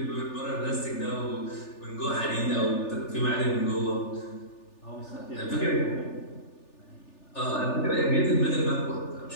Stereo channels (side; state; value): right; late; 3.4 ms